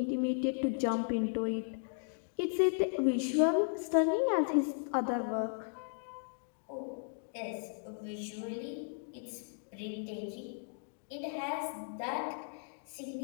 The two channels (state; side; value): silent; right; digital silence